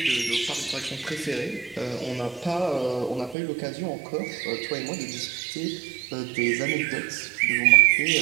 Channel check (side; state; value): left; drops out; at 3.4 s